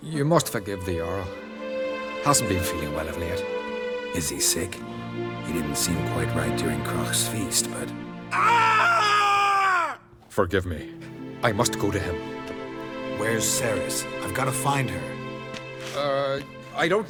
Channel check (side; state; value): both; identical; correlation 1.00